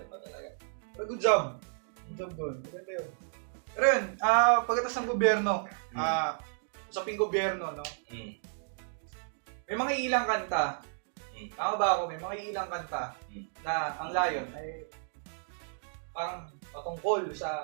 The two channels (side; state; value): left; silent; digital silence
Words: pa talaga. Pero good job. Good job doon. Maganda yun. Pero yun, pagkatas ng gobyerno, usaping gobyerno, no? May mga ilang kanta. Tama ba ako? May mga ilang kanta na ang layon ay parang patungkol